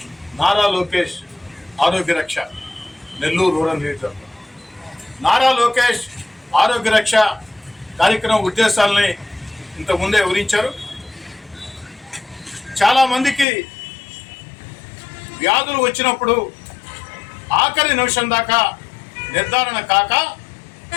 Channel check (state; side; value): drops out; right; at 13.5 s